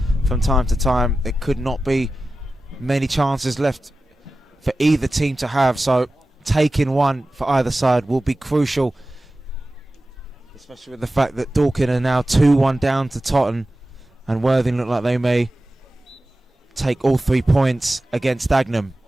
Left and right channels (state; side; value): normal; both; correlation 0.95